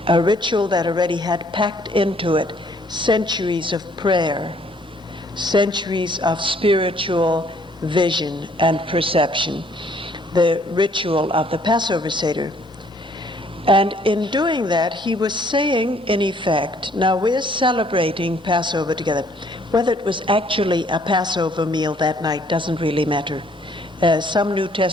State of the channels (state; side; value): normal; both; correlation 0.62